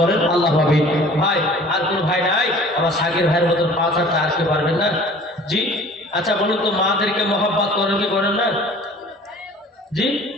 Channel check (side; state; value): both; normal; correlation 0.48